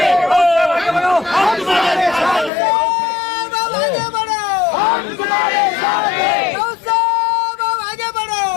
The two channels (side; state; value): right; drops out; at 2.5 s